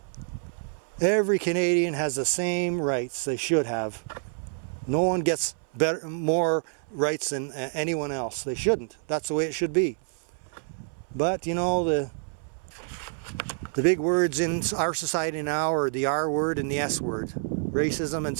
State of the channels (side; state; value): left; silent; 60 dB below the other